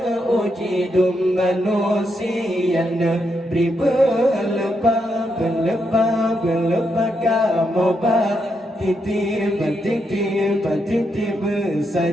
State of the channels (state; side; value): normal; both; correlation 0.81